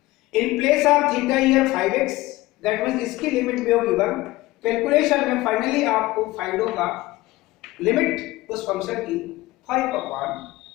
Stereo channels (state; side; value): quieter; right; 18.8 dB